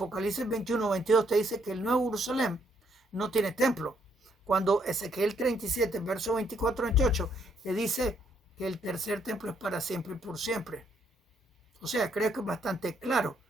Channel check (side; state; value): both; normal; correlation 0.72